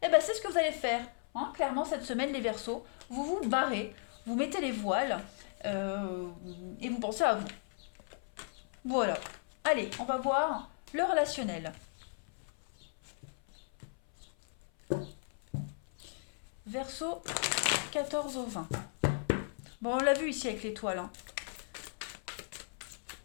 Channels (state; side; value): silent; right; 54 dB below the other